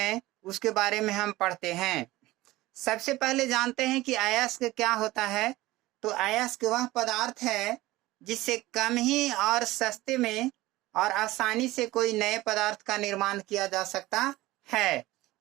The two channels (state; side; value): quieter; left; 18.2 dB